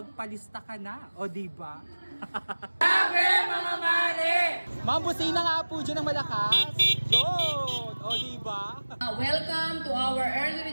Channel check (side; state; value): both; inverted; correlation -1.00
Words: ka na, o diba? Grabe mga mare! Mambusina nga po dyan ng malakas. Yun! O diba? Welcome to our early